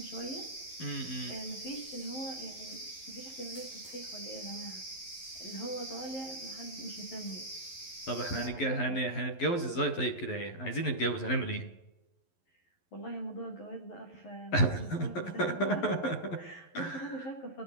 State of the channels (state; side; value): late; right; 11 ms